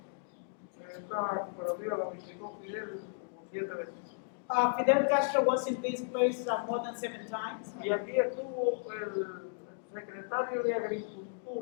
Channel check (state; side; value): silent; right; digital silence